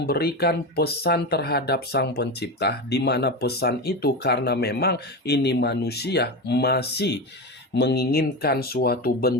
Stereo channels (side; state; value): both; normal; correlation 0.20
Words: pesan terhadap Sang Pencipta, di mana pesan itu karena memang ini manusia masih menginginkan suatu